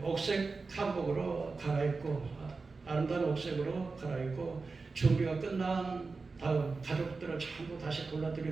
옥색 한복으로 갈아입고 아름다운 옥색으로 갈아입고 준비가 끝난 다음 가족들을 전부 다시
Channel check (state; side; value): quieter; left; 4.1 dB